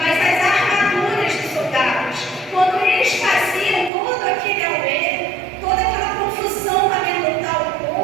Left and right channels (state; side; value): drops out; left; at 3.9 s